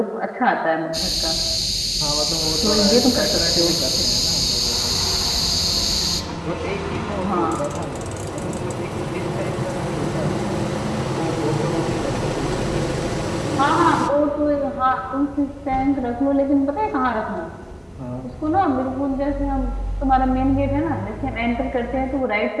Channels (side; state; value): both; identical; correlation 1.00